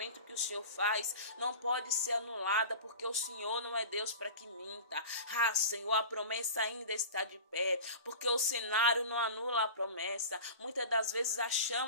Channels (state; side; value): inverted; both; correlation -0.34